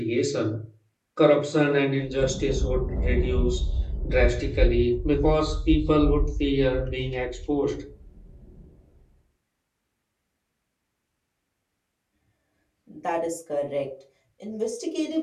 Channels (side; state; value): both; identical; correlation 1.00